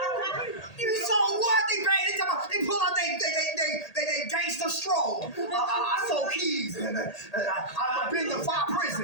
You saw what? They pull out they gangster stroll. I sold keys and I've been to 5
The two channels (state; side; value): late; right; 1.8 ms